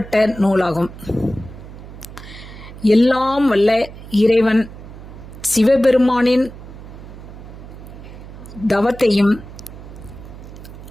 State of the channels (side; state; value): right; noise; hum, 15 dB below the sound